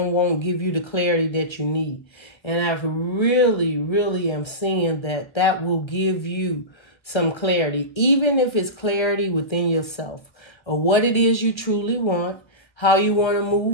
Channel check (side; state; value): right; late; 1.1 ms